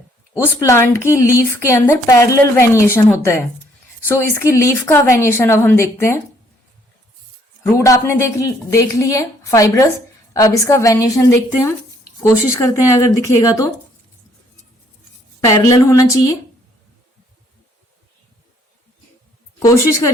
उस प्लांट की लीफ के अंदर पैरेलल वेनिएशन होता है। सो इसकी लीफ का वेनिएशन अब हम देखते हैं। रूट आपने देख ली है फाइब्रस, अब इसका वेनिएशन देखते हैं हम। कोशिश करते हैं अगर दिखेगा तो पैरेलल होना चाहिए, कोशिश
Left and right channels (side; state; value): both; normal; correlation 0.65